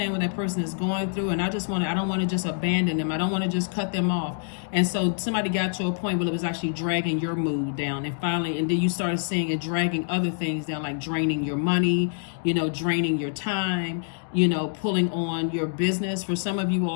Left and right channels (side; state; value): right; silent; digital silence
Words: what that person is going through, and I don't want to just abandon them. I don't want to just cut them off. And so somebody got to a point where it was actually dragging your mood down. And finally, and then you started seeing it dragging other things down, like draining your money, draining your time, pulling on your business. For some of you